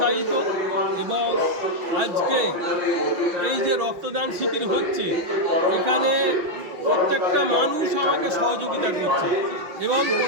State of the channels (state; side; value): late; left; 6.1 ms